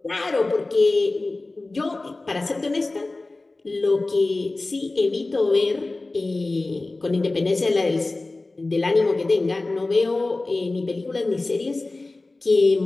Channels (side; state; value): right; quieter; 3.2 dB